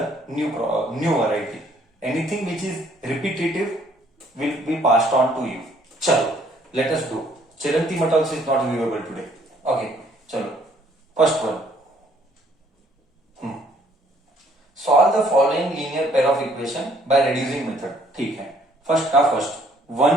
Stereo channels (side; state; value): both; normal; correlation 0.63